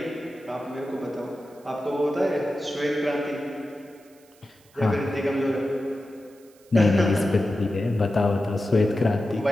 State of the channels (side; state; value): right; noise; hiss, 29 dB below the sound